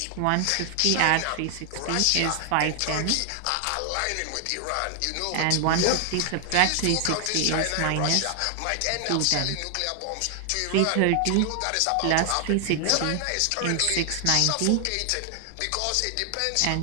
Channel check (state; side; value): different; both; correlation 0.00